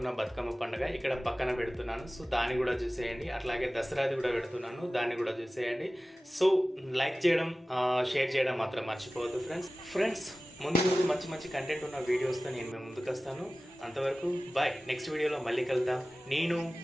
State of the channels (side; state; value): both; normal; correlation 0.97